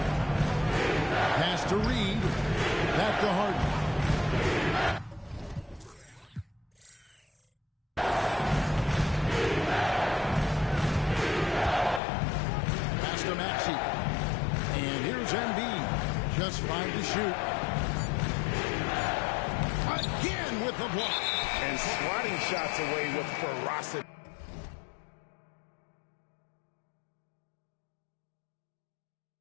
Pass to Reed. Back to Harden. Pass to Maxey. And here's Embiid. Just 5 to shoot. Again with the block. And swatting shots away with ferocity.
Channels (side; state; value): right; drops out; at 12.0 s